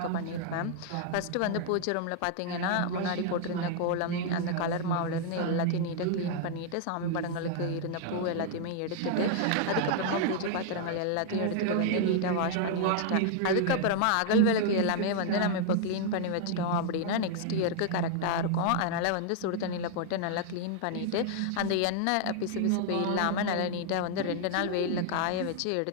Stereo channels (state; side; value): different; both; correlation 0.00